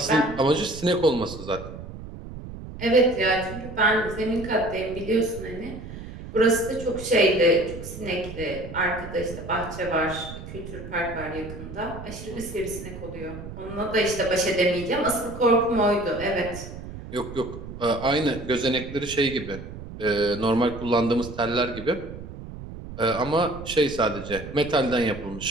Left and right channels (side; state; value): right; noise; rumble, 11 dB below the sound